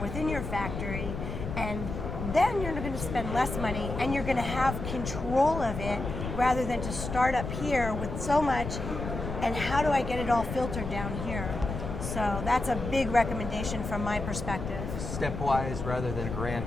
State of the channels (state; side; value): noise; left; rumble, 6 dB below the sound